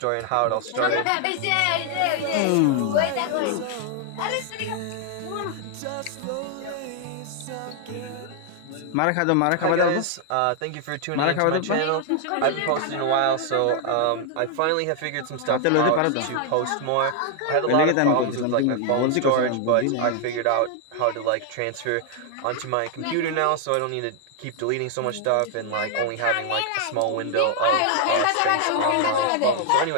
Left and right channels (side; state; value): both; different; correlation 0.00